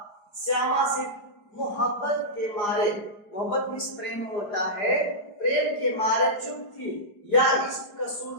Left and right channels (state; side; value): late; right; 4.8 ms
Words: श्यामा से मोहब्बत के मारे, मोहब्बत में प्रेम होता है, प्रेम के मारे चुप थी, या इस